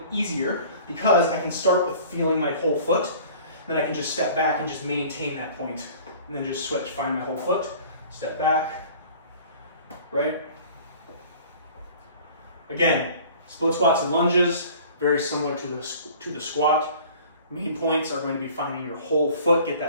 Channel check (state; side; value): inverted; both; correlation -0.47